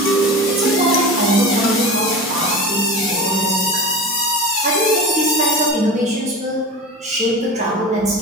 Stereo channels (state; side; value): normal; both; correlation 0.32